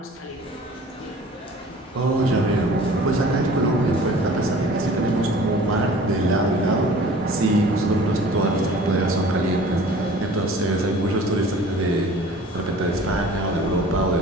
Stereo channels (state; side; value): normal; both; correlation 0.46